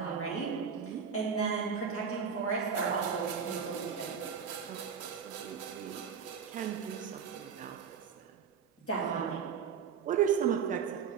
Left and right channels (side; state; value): left; quieter; 6.7 dB